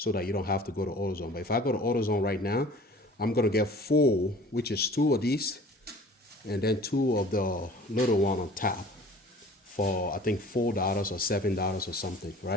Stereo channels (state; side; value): normal; both; correlation 0.47